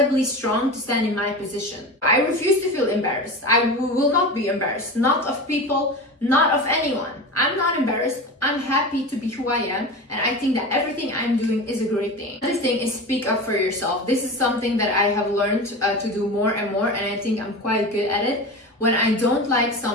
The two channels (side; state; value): both; normal; correlation 0.28